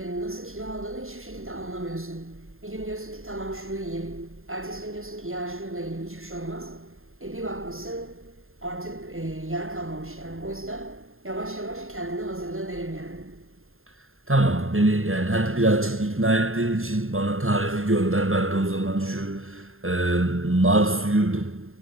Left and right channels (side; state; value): left; late; 0.61 ms